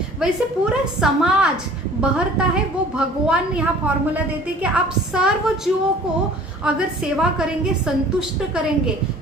वैसे पूरा समाज बहरता है। वो भगवान यहाँ फॉर्मूला देते कि आप सर्व जीवों को अगर सेवा करेंगे, संतुष्ट करेंगे,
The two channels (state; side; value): normal; both; correlation 0.49